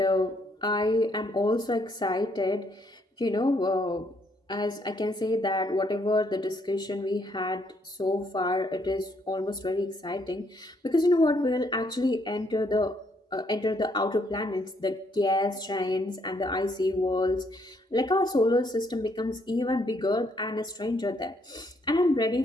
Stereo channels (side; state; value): both; normal; correlation 0.71